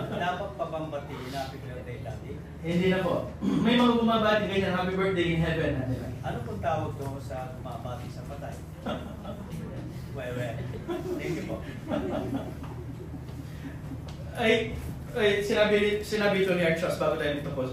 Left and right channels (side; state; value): both; identical; correlation 1.00